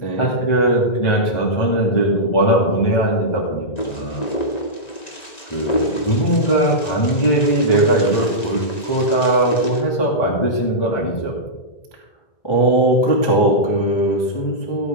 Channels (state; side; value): late; right; 1.9 ms